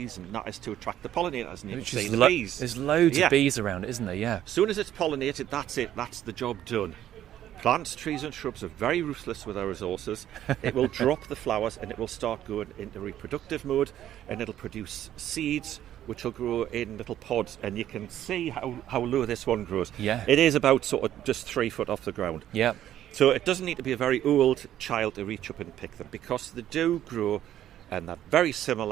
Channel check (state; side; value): quieter; left; 11.8 dB